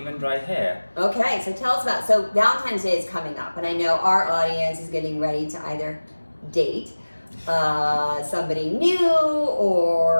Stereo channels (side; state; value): both; inverted; correlation -1.00